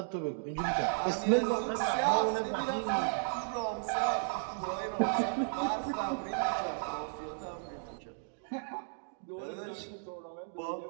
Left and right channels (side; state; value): left; silent; digital silence